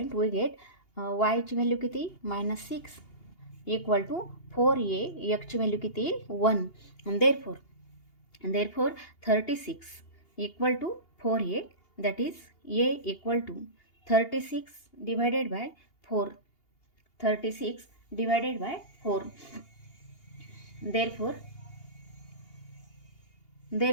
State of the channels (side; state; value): right; late; 2.8 ms